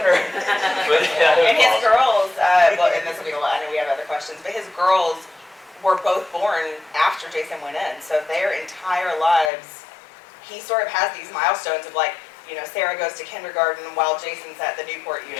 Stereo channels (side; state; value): right; drops out; at 9.5 s